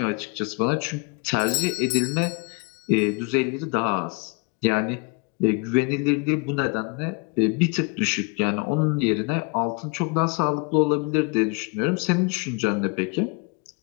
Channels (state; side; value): quieter; right; 29.6 dB